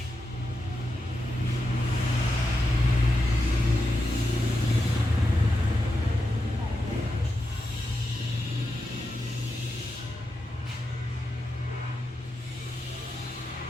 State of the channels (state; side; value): normal; both; correlation 0.88